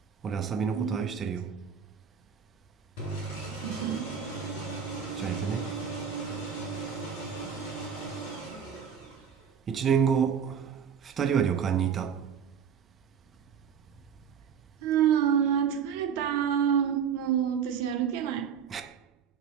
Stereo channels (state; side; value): quieter; left; 7.5 dB